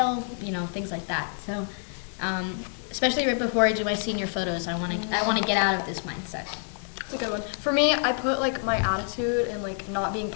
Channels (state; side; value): silent; right; 60 dB below the other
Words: things like that. So, especially right before I do my senior photos, I want to get out of this mindset. That's a good one. For me, I put like my attitude and like not being